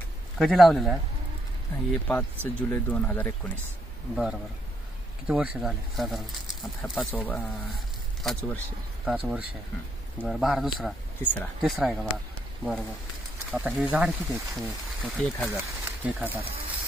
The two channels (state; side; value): normal; both; correlation 0.74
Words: कधी लावलेला आहे? हे 5 जुलै 2019. बरं बरं. किती वर्ष झाले साधारण? आता हा 5 वर्ष. 5 वर्ष आहे. बरं, बहार दुसरा तिसरा आहे का बहार? बरं बरं. आता हे झाड किती आहेत? 1000. 1000.